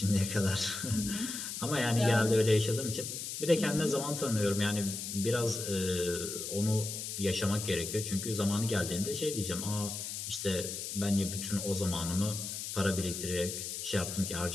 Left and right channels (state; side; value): noise; left; hiss, 5 dB below the sound